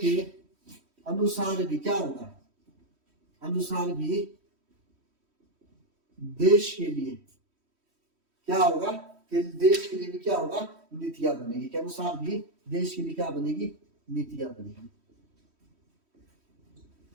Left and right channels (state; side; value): late; left; 3.1 ms